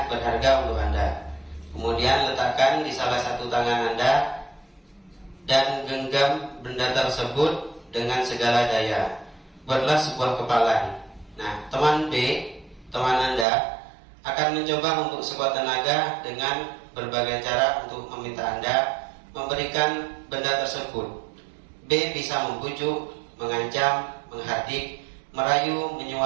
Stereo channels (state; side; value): drops out; left; at 13.5 s